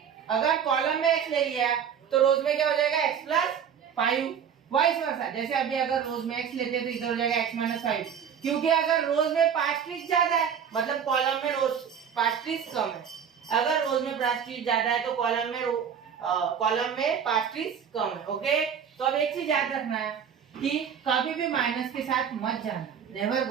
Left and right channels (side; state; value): left; quieter; 7.7 dB